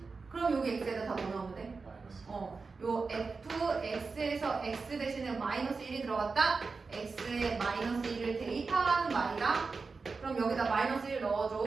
그럼 여기 x에다 다 뭐 넣으면 돼? 요 fx에서 x 대신에 마이너스 1이 들어갔다? x에 마이너스 1을 대입하라는 말이다. 그럼 여기다 마이너스 1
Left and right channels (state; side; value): quieter; left; 4.4 dB